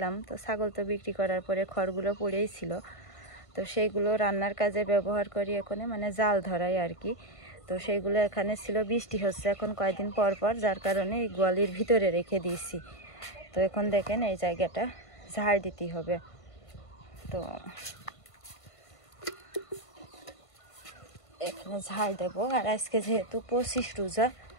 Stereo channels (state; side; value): late; right; 1.5 ms